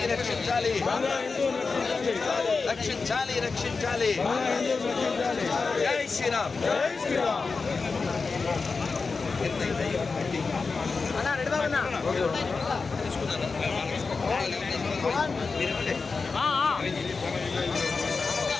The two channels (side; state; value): right; quieter; 4.5 dB